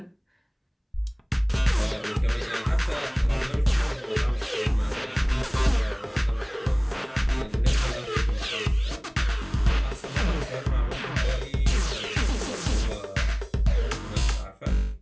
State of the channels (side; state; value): both; identical; correlation 1.00